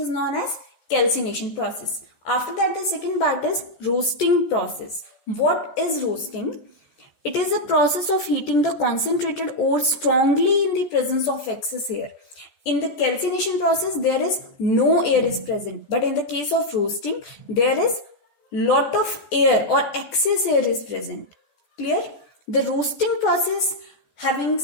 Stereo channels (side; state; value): right; late; 14 ms